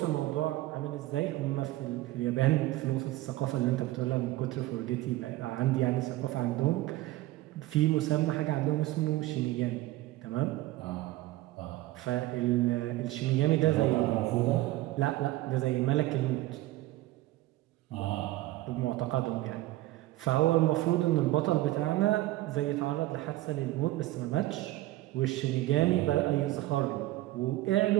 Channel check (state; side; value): quieter; left; 17.0 dB